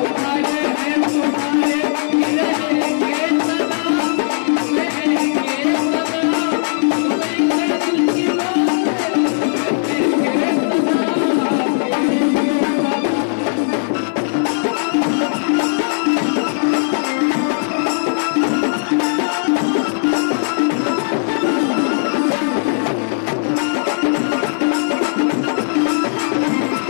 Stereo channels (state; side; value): silent; right; digital silence